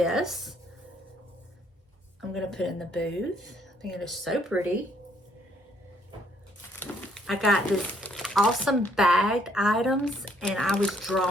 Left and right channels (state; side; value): normal; both; correlation 0.67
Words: I'm going to put in the booth. I think it is so pretty. I got this awesome bagged items, and I was